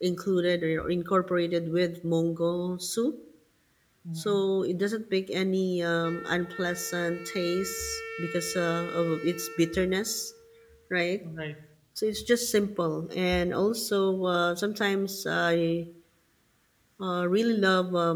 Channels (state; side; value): identical; both; correlation 1.00